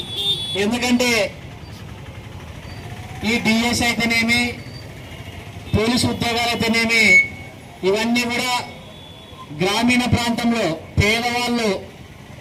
ఎందుకంటే ఈ డిఎస్ అయితేనేమి, పోలీసు ఉద్యోగాలు అయితేనేమి, ఇవన్నీ కూడా గ్రామీణ ప్రాంతంలో పేదవాళ్ళు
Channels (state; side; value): identical; both; correlation 1.00